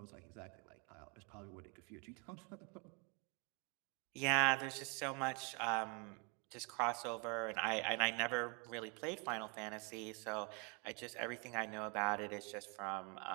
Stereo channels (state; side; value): quieter; left; 32.6 dB